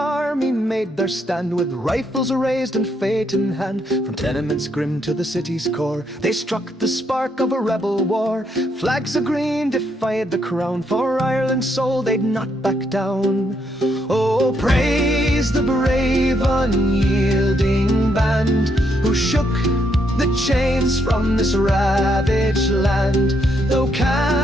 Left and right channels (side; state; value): both; normal; correlation 0.76